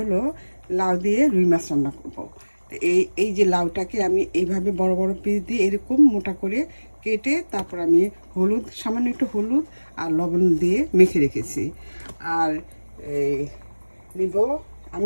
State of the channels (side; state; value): both; inverted; correlation -1.00